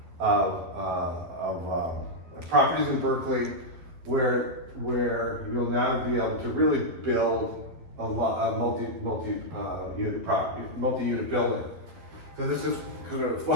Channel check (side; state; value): left; late; 12 ms